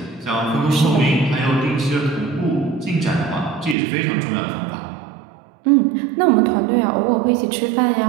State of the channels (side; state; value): left; drops out; at 3.8 s